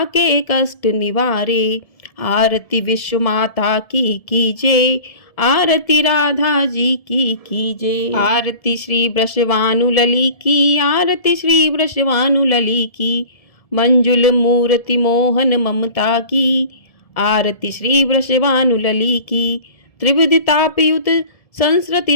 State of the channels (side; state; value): right; late; 1.7 ms